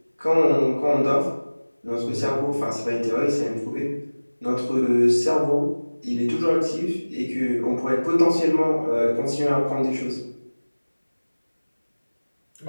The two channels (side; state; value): both; inverted; correlation -1.00